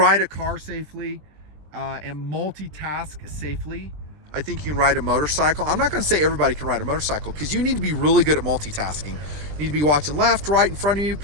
a car safely and multitask safely, I think you can ride a motorcycle. I'm not going to say everybody can ride a motorcycle because you need to be really good at multitasking. You need to be watching left, right, in front of you,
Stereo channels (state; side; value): late; left; 20 ms